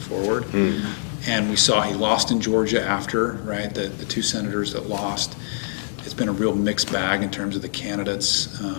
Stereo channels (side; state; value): right; silent; digital silence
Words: And we saw he lost in Georgia after, right, the two senators that lost. It's been a real mixed bag in terms of the candidates.